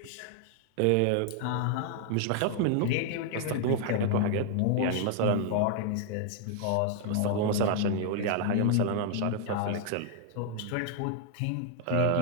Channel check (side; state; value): both; different; correlation 0.00